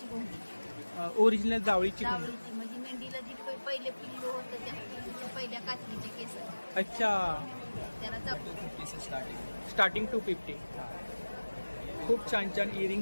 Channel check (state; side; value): inverted; both; correlation -1.00